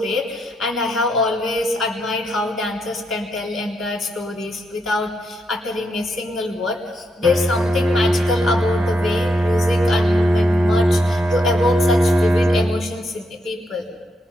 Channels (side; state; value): both; normal; correlation 0.80